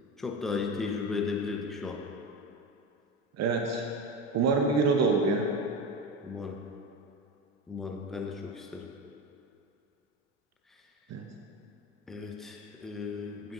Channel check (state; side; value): normal; both; correlation 0.22